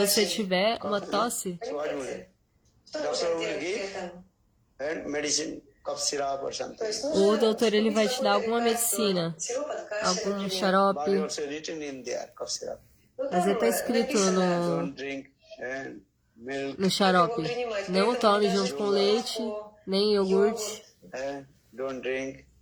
tiver uma tosse, o doutor ele vai te dar alguma medicina, algum xarope, mas está escrito no xarope: não tome junto com leite, nem iogurte,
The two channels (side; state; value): both; identical; correlation 1.00